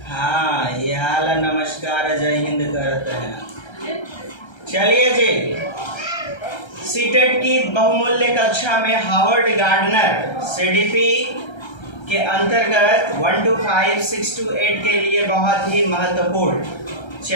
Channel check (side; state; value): right; late; 1.3 ms